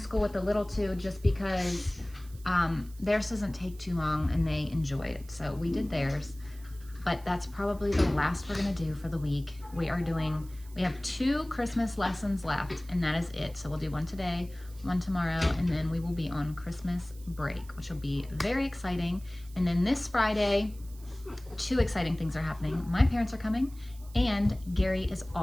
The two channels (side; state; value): right; noise; hiss, 23 dB below the sound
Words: with the little two just because theirs doesn't take too long and they enjoy it. So we did theirs, but that's probably the last we're gonna do for the week. We have 2 Christmas lessons left, and that is it. So we'll do one today, one tomorrow, and then we will be on Christmas break, which will be very exciting. And then this Friday, 2 exciting things are happening. My parents are coming and Gary is